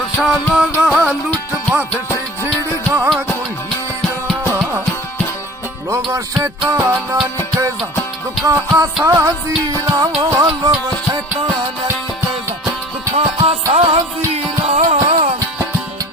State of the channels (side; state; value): both; normal; correlation 0.44